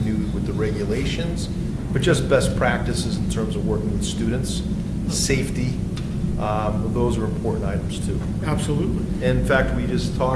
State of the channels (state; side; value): identical; both; correlation 1.00